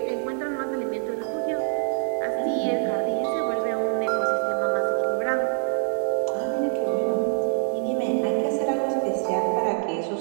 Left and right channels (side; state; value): left; silent; 58 dB below the other